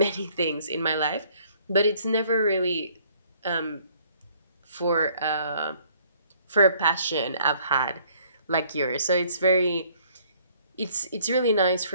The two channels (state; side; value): inverted; both; correlation -0.60